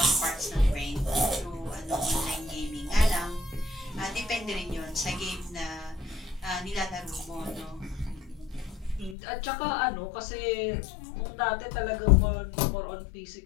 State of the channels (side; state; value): right; drops out; at 9.2 s